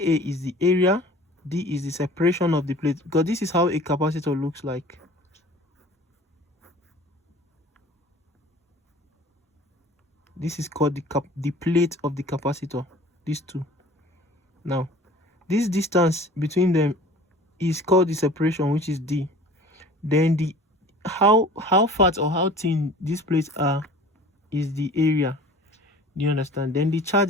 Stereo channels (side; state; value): both; normal; correlation 0.45